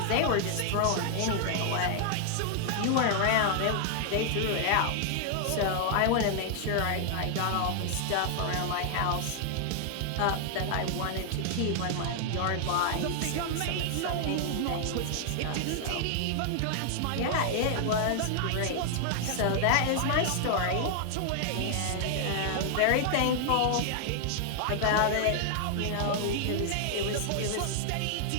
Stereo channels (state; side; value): different; both; correlation 0.00